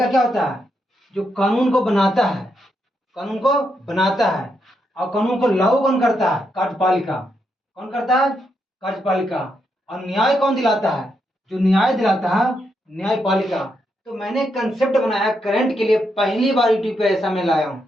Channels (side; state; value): both; normal; correlation 0.81